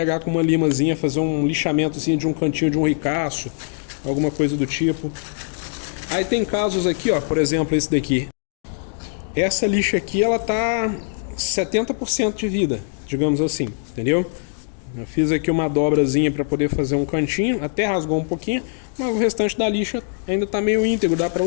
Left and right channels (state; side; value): silent; right; digital silence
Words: com uma limazinha, fazer um lixamentozinho de um cantinho de um ricaço, alguma coisa do tipo. Aí tem casos aqui, ó, por exemplo, esse daqui. Essa lixa aqui, ela tá 70% de vida, digamos assim, entendeu? Eu fiz aqui uma dobrazinha para poder fazer um cantinho, até rasgou um pouquinho, mas o restante da lixa ainda tá meio íntegro, dá para